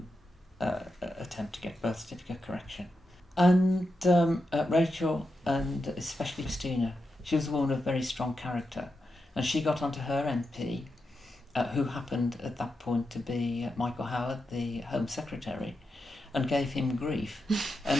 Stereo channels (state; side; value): normal; both; correlation 0.87